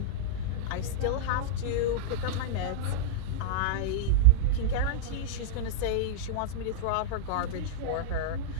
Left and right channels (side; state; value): both; different; correlation -0.03